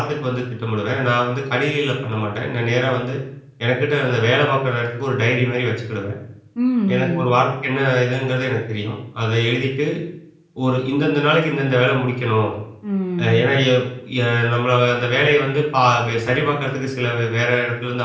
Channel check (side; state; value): both; identical; correlation 1.00